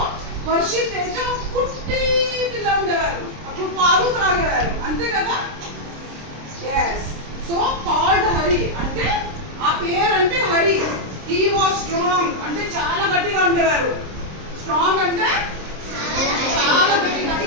హర్షి తేజ పుట్టి పిల్ల ఉండేవారు. అప్పుడు పాలు త్రాగేవారు, అంతే కదా? ఎస్. సో కాల్డ్ హరి అంటే ఆ పేరు అంటే హరి. హీ వాజ్ స్ట్రాంగ్ అంటే చాలా గట్టిగా ఉండేవారు. స్ట్రాంగ్ అంటే చాలా గట్టిగా.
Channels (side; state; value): left; late; 26 ms